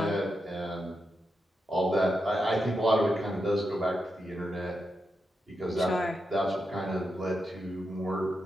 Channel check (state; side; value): normal; both; correlation 0.86